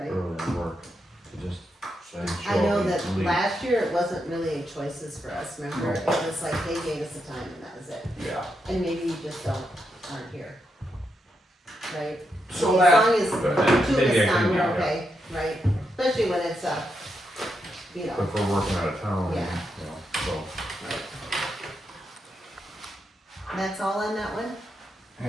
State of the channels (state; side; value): normal; both; correlation 0.83